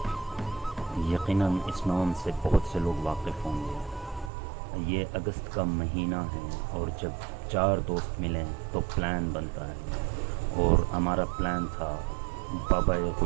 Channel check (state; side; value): drops out; left; at 4.3 s